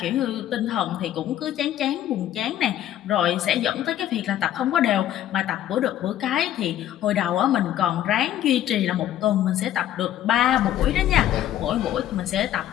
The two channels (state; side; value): quieter; right; 11.9 dB